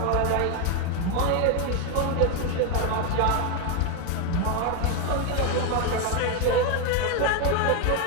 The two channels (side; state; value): both; different; correlation 0.01